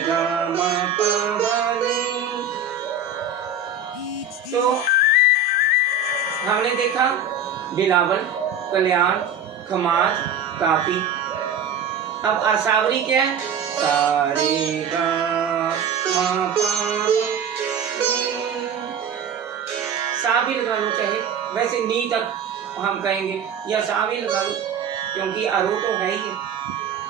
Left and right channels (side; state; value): left; quieter; 4.5 dB